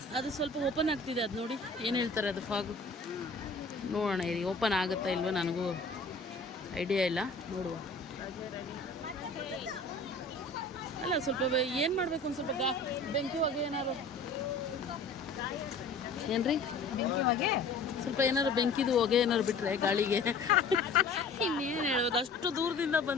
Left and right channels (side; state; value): right; quieter; 3.5 dB